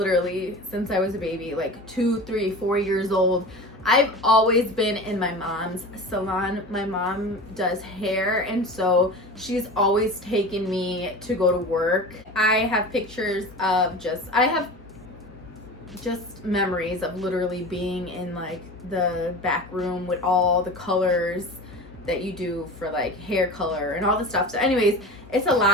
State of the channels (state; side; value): normal; both; correlation 0.33